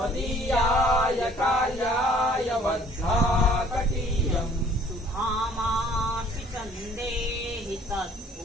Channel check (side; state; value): both; normal; correlation 0.56